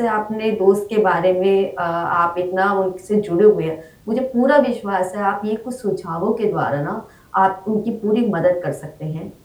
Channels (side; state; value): both; identical; correlation 1.00